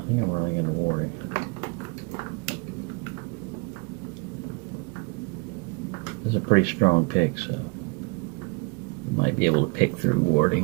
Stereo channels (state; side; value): quieter; left; 27.9 dB